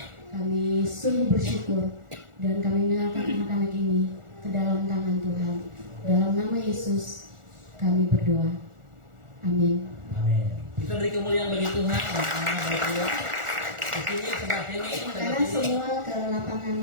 Kami sungguh bersyukur dan kami menyerahkan anak-anak ini ke dalam tangan Tuhan. Dalam nama Yesus kami berdoa. Amin. Amin. Kita beri kemuliaan bagi Tuhan. Di sini sebelah sini. Karena semua ke lapangan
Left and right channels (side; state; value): left; late; 1.4 ms